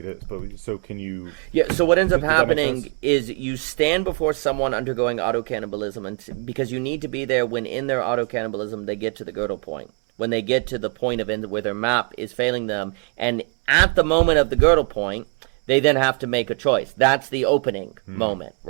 is. But so can you... Yeah, so what ends up happening is you stand before someone undergoing auto-cannibalism because you need to be there when in their auto-cannibalism they get to the Gödel point. When they get to the point of where their map is failing them. And at the moment of the Gödel point, they then have to make a choice. That's the opening moment,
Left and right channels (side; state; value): left; quieter; 36.9 dB